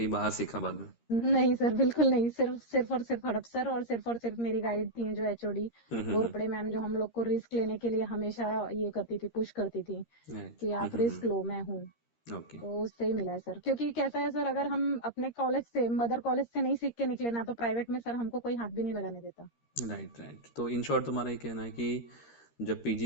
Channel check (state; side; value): late; right; 13 ms